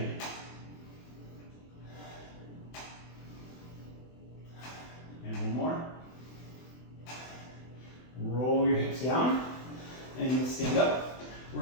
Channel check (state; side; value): late; right; 24 ms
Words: And one more. Roll your hips down and stand up.